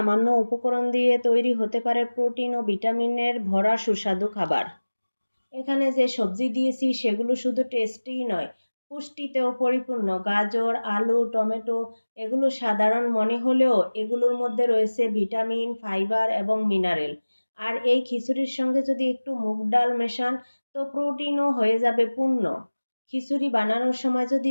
উপকরণ দিয়ে তৈরি হতে পারে প্রোটিন ও ভিটামিনের ভরা সুস্বাদু খাবার। এখানে যে সবজি দিয়েছি সেগুলো শুধু টেস্টিই নয়, পুষ্টিতেও পরিপূর্ণ। গাজর, আলু, টমেটো এগুলো সাধারণ মনে হলেও এগুলোর মধ্যে রয়েছে ভিটামিন, ফাইবার এবং মিনারেল। আর এই খিচুড়ির সঙ্গে যদি একটু মুগ ডাল মেশান তো প্রোটিনও হয়ে যাবে পূর্ণ। খিচুড়ি বানানোর সময় যদি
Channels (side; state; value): both; inverted; correlation -1.00